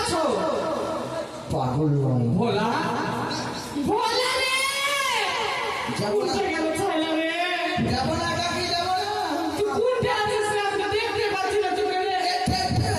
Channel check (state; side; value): identical; both; correlation 1.00